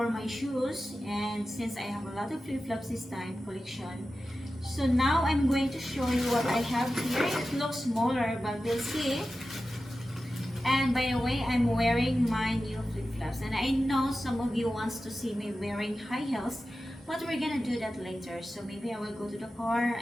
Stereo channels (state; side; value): normal; both; correlation 0.93